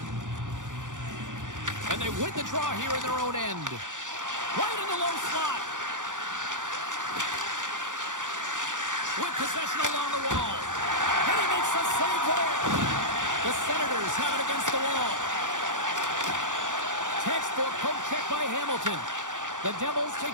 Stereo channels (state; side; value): late; left; 0.87 ms